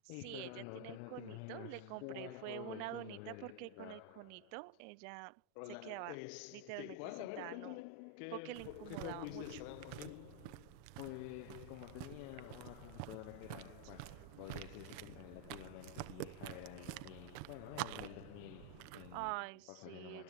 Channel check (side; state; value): both; different; correlation 0.00